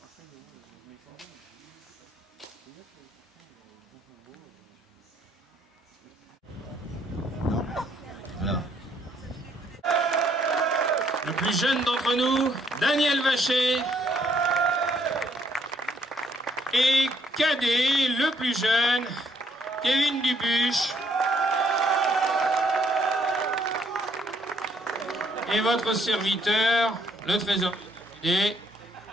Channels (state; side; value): normal; both; correlation 0.69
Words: Voilà. Le plus jeune d'entre nous, Daniel Vacher. Et cadet, le plus jeune, Kevin Dubuche. Et votre serviteur, le trésorier.